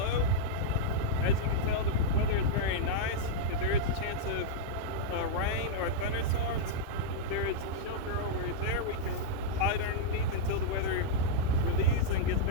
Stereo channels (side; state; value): both; different; correlation -0.03